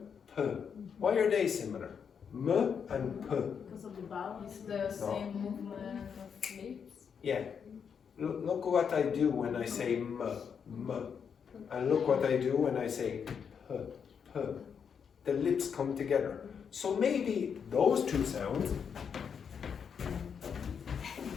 p. Why are they similar? M and p. Because of the vowel. It's the same movement of lips. Yeah. Look what I do when I say m. And look what I do when I say p. The lips come together. So maybe those two sounds,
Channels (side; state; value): right; quieter; 6.9 dB